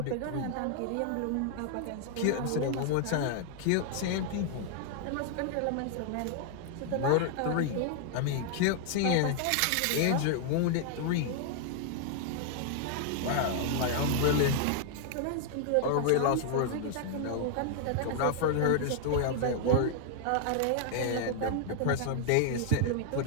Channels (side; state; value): both; different; correlation 0.00